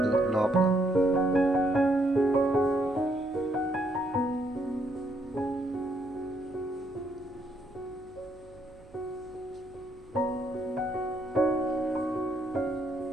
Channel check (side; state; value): right; noise; hum, 24 dB below the sound